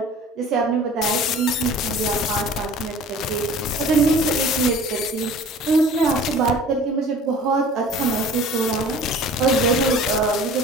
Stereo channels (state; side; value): normal; both; correlation 0.45